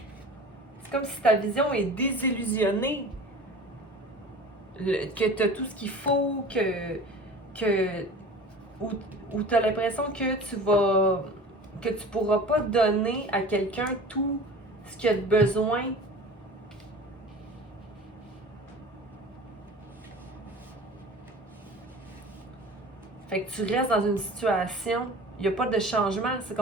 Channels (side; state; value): both; normal; correlation 0.40